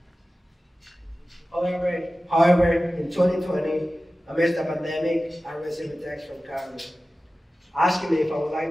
However, in 2020, amidst the pandemic, I received a text from Carlos asking me if I would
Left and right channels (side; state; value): both; normal; correlation 0.96